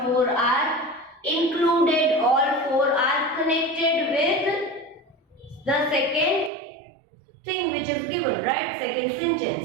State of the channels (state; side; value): drops out; left; at 6.5 s